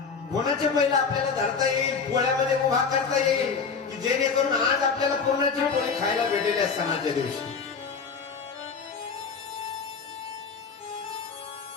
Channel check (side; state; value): right; quieter; 5.5 dB